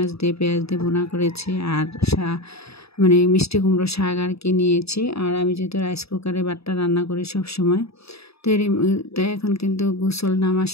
দিয়ে পেঁয়াজ দিয়ে ভুনা করেছি, আর মিষ্টি কুমড়ো শাক আর কি নিয়েছি। আর আমি যেহেতু রাইস কুকারে ভাতটা রান্না করি সব সময়, তো এখন কিন্তু গোসল নামাজ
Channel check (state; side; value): late; right; 0.78 ms